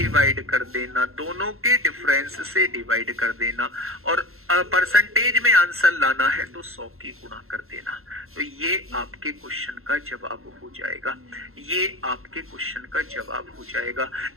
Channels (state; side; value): late; left; 0.62 ms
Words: कर देना, दोनों के डिफरेंस से डिवाइड कर देना, और परसेंटेज में आंसर लाना है तो 100 की गुणा कर देना। तो ये आपके क्वेश्चन का जवाब हो जाएगा, ये आपके क्वेश्चन का जवाब हो जाएगा।